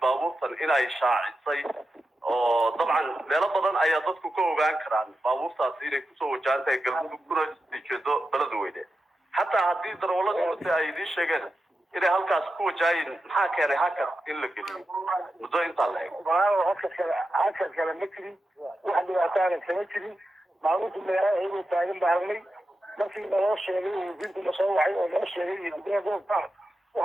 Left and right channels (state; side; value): normal; both; correlation 0.90